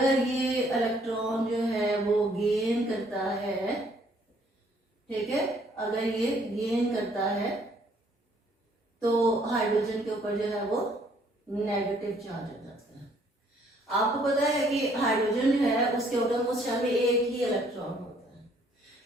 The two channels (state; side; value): normal; both; correlation 0.64